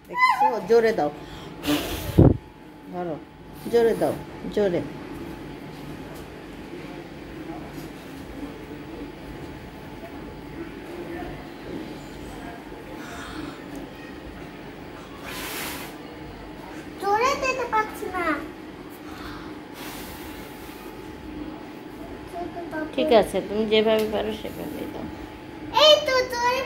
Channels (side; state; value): both; identical; correlation 1.00